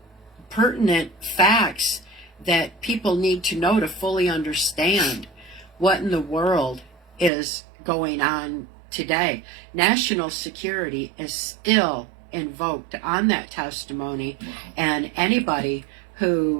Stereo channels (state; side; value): drops out; left; at 7.3 s